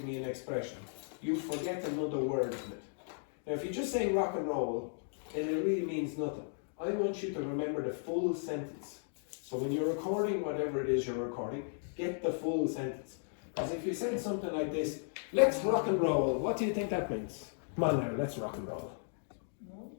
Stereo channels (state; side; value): silent; right; digital silence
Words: me an expression, you forget another word in it. Now, if you just say rock and roll, then it really means nothing. I want you to remember the full sentence. So when you're recording whatever it is you're recording, get the full sentence. Because if you said something like this, let's rock and roll, what do you think that means? Come on now, let's rock and roll.